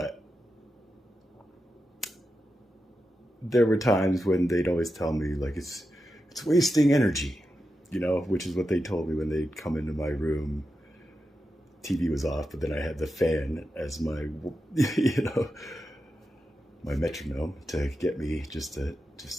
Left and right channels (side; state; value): both; normal; correlation 0.89